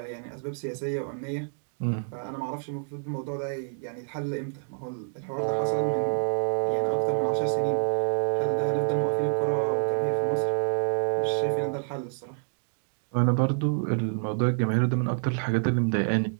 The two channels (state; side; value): silent; left; digital silence